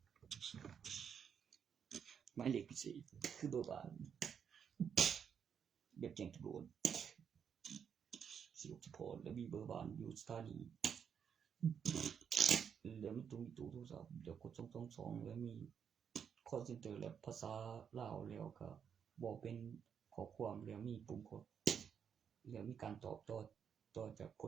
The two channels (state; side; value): quieter; left; 7.5 dB